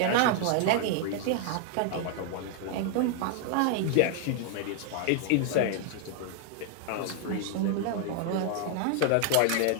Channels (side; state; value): both; different; correlation 0.00